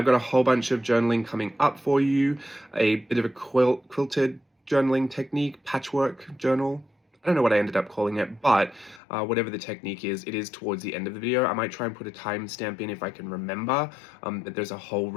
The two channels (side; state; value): right; drops out; at 9.0 s